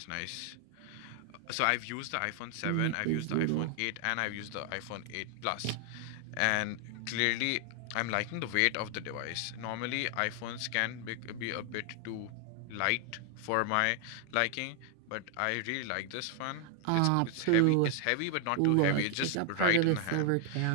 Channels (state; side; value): different; both; correlation 0.00